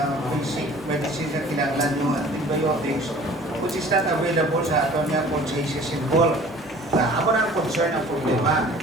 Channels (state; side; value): normal; both; correlation 0.48